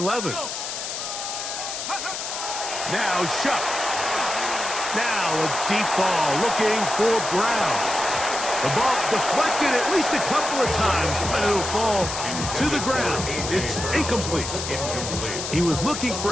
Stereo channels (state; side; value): noise; left; hiss, 5 dB below the sound